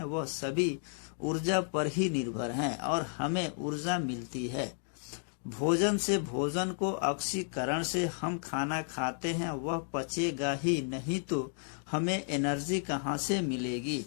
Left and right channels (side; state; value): right; silent; 56 dB below the other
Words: वह सभी ऊर्जा पर ही निर्भर हैं और हमें ऊर्जा मिलती है भोजन से। भोजन को ऑक्सीकरण से हम खाना खाते हैं, वह पचेगा ही नहीं तो हमें एनर्जी कहाँ से मिलेगी।